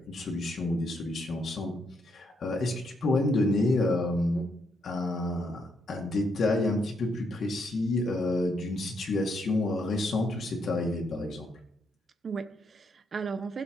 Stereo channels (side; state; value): both; normal; correlation 0.77